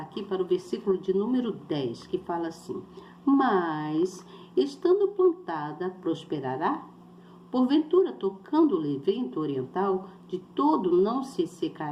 para o versículo de número 10, que fala assim, mas, estando plantada, prosperará? Porventura, tocando-lhe vento oriental, de todo não se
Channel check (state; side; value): identical; both; correlation 1.00